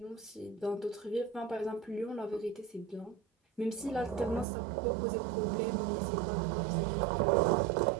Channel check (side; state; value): left; drops out; at 4.5 s